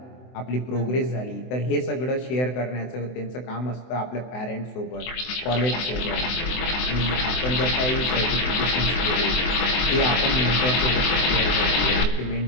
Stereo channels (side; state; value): right; late; 24 ms